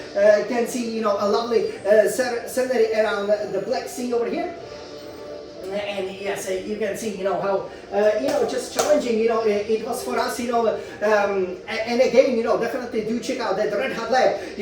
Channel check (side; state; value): both; identical; correlation 1.00